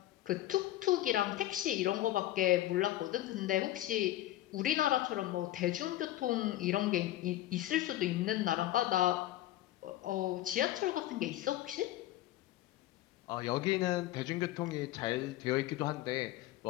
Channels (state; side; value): quieter; right; 14.8 dB